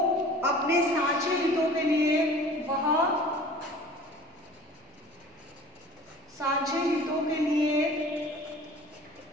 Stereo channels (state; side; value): normal; both; correlation 0.45